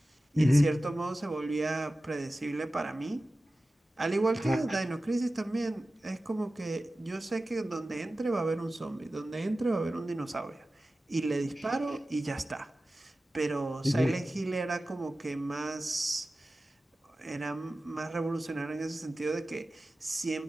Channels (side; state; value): both; normal; correlation 0.95